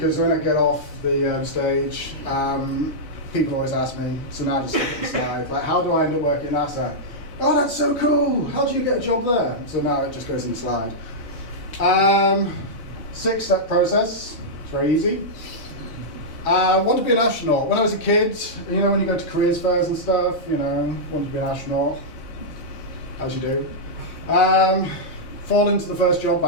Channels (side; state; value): right; late; 4.0 ms